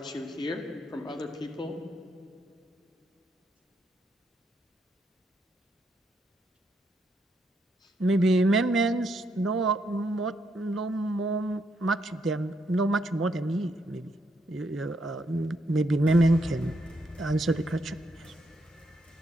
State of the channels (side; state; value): both; normal; correlation 0.76